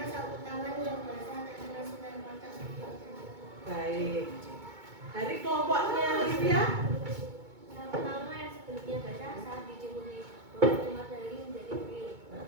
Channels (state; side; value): late; left; 2.2 ms